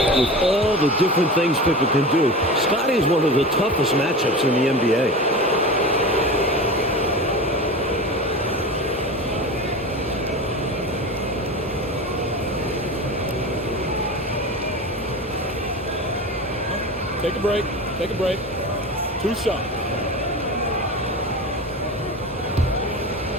all the different things Pippen can do, Scotty is one of the toughest matchups in the NBA. Take a break. Take a break. 2 shots.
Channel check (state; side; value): normal; both; correlation 0.30